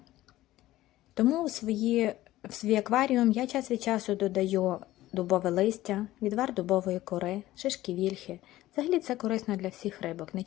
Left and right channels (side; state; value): right; quieter; 15.8 dB